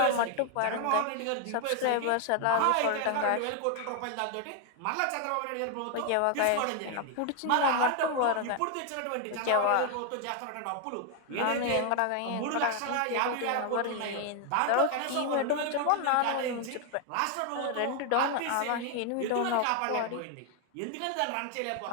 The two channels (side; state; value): both; different; correlation 0.01